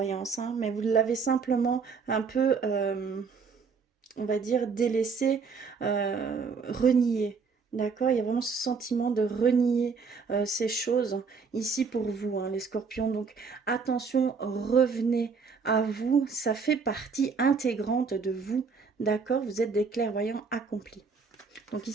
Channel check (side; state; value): left; quieter; 5.3 dB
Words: hein, mais vous l'avez simplement un peu, on va dire, délaissé, renié. D'accord, il y a vraiment ce sentiment de renier ces choses ici pour vous, hein, les scorpions. Donc attention, revenez à vous, ça fait partie intégrante de vous. D'accord, vous êtes des clairvoyants accomplis. Donc